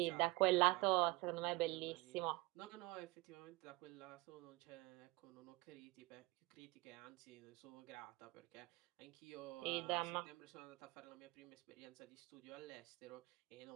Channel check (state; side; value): quieter; left; 22.6 dB